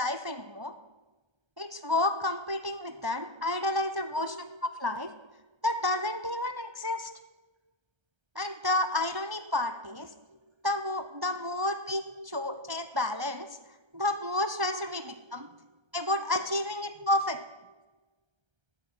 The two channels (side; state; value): left; late; 1.3 ms